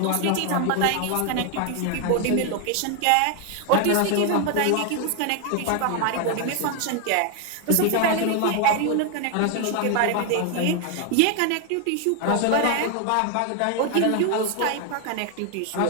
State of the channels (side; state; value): both; different; correlation 0.01